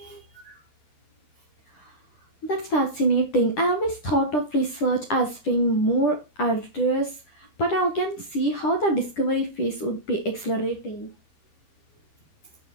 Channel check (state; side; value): late; right; 10 ms